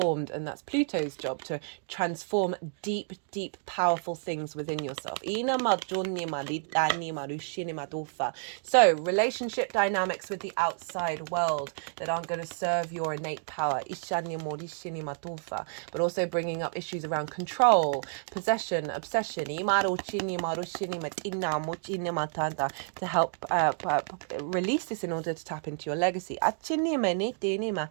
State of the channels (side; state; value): left; silent; digital silence